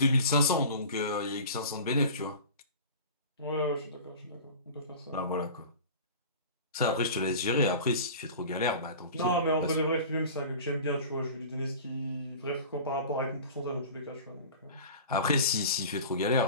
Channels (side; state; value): both; inverted; correlation -0.38